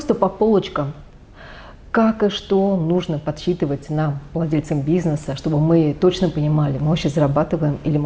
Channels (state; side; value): identical; both; correlation 1.00